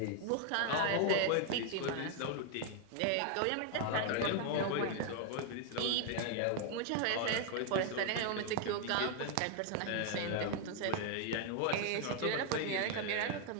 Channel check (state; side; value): different; both; correlation 0.00